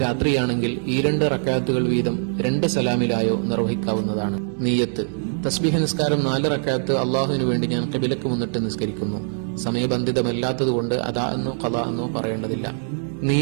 രാത്രിയാണെങ്കിൽ ഈ 2 റക്അത്തുകൾ വീതം 2 സലാമിലായോ നിർവഹിക്കാവുന്നതാണ്. നിയ്യത്ത്. തസ്ബീഹ് നിസ്കാരം 4 റക്അത്ത് അള്ളാഹുവിനു വേണ്ടി ഞാൻ ഖിബലക്ക് മുന്നിട്ട് നിസ്കരിക്കുന്നു. സമയബന്ധിതമല്ലാത്തതുകൊണ്ട് അദാ എന്നോ ഖളാ എന്നോ പറയേണ്ടതില്ല.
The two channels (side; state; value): left; silent; digital silence